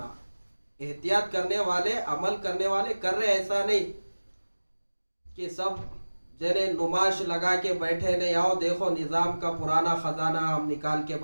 احتیاط کرنے والے، عمل کرنے والے کر رہے، ایسا نہیں کہ سب جنہیں نمائش لگا کے بیٹھے نہیں، آؤ دیکھو نظام کا پرانا خزانہ ہم نکال کے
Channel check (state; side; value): inverted; both; correlation -1.00